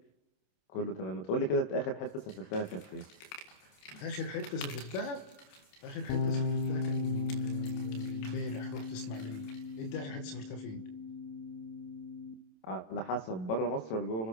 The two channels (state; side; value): late; right; 27 ms